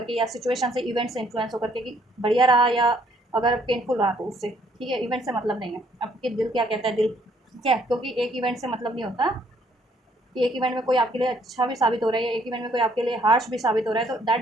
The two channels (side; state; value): both; normal; correlation 0.66